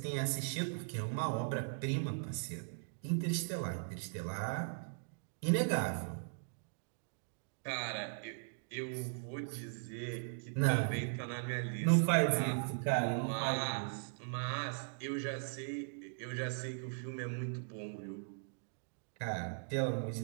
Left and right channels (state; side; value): silent; left; digital silence